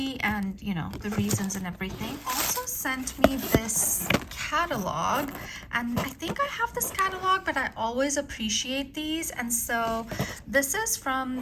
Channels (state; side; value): identical; both; correlation 1.00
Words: and, you know, the reasons and everything. Also sent me this catalog, and I think I have this catalog, but I always appreciate these. And so this is